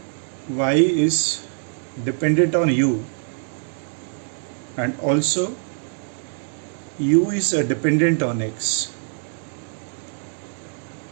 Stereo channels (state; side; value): silent; left; 60 dB below the other